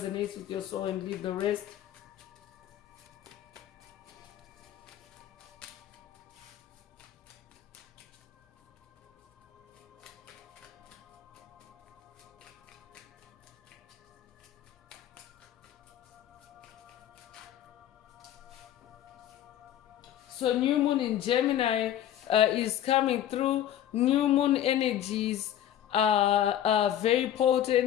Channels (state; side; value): quieter; right; 11.2 dB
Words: with your soul and leave the rest. So new moon in Gemini is coming through. New moon energies are very